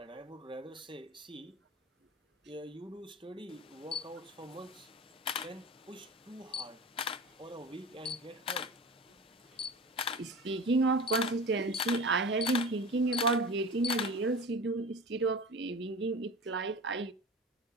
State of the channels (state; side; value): normal; both; correlation 0.33